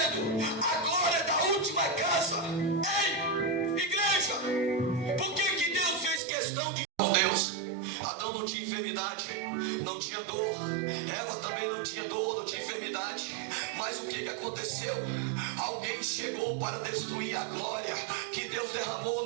a glória da última casa. Ei, igreja, por que Deus fez questão de... Deus, Adão não tinha enfermidade, não tinha dor, Eva também não tinha dor, não tinha enfermidade. Mas o que aconteceu? Alguém chegou para destruir a glória que Deus derramou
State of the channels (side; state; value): left; drops out; at 6.2 s